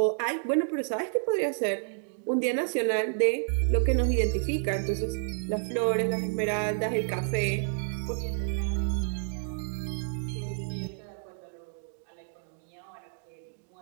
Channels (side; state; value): left; silent; digital silence